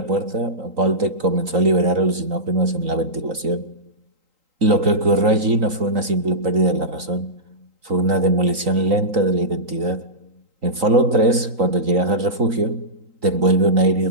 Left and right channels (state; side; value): late; left; 3.8 ms